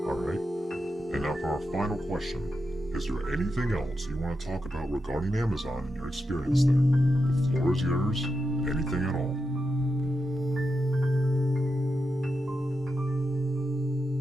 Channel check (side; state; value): both; normal; correlation 0.87